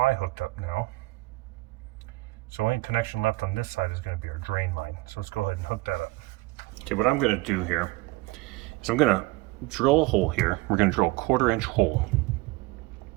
hooked up now. So only connection left on this side is going to be our drain line. So let's go ahead and hook that up. Okay, what I'm going to do here is I'm going to drill a hole here. We're going to drill a 1/4-inch hole.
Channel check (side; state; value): left; quieter; 21.1 dB